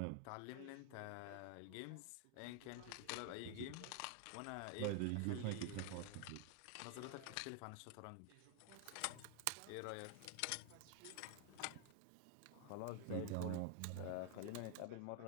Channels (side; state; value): both; different; correlation 0.00